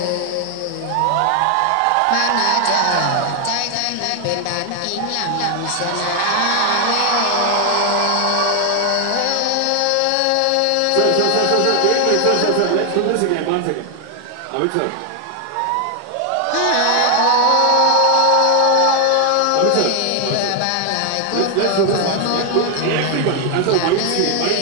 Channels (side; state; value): both; different; correlation 0.00